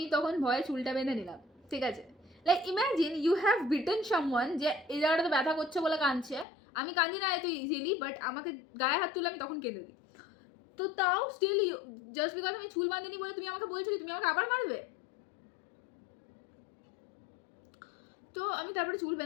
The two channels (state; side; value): drops out; right; at 6.5 s